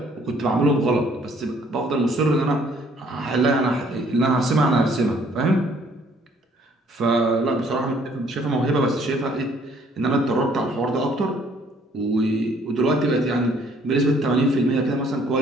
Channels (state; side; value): normal; both; correlation 0.62